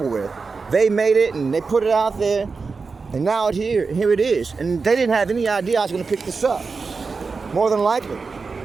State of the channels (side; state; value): left; quieter; 4.6 dB